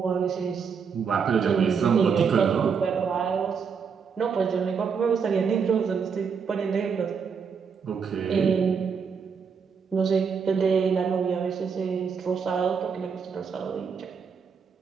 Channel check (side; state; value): left; quieter; 6.2 dB